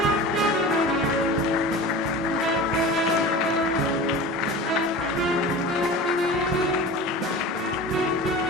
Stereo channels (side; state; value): both; normal; correlation 0.34